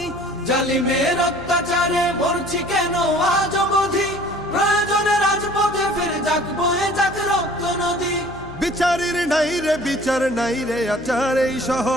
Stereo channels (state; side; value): noise; left; hum, 18 dB below the sound